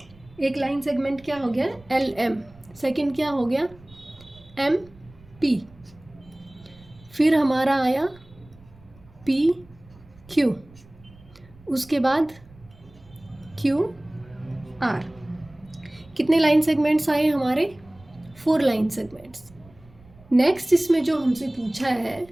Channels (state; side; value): noise; right; rumble, 25 dB below the sound